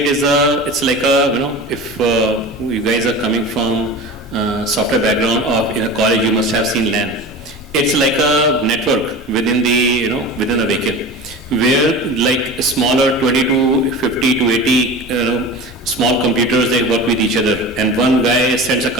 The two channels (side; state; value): both; normal; correlation 0.33